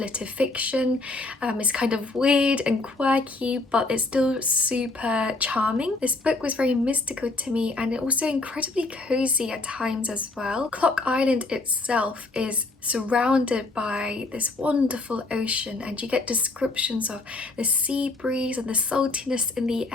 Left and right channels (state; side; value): quieter; right; 3.3 dB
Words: fiction. It's kind of weird and quirky, but it's still super charming. This book was very mystical to me and also incredibly cozy at times as well. Clock Island itself is surrounded by this wonderful ocean, and you get descriptions of the sea breeze and the saltiness in the